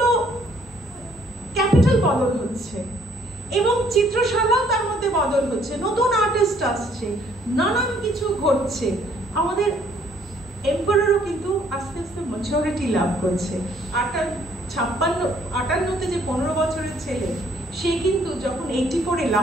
ক্যাপিটাল বদল হচ্ছে, এবং চিত্রশালাও তার মধ্যে বদল হচ্ছে, নতুন আর্টিস্ট আসছে, নানান কিছু ঘটছে। আমাদের এম্পায়ারও কিন্তু আস্তে আস্তে ম্যাচুরিটি লাভ করছে। 58-তে যে 15 বছরের ছেলে, সে কিন্তু যখন 84-এ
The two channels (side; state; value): both; normal; correlation 0.63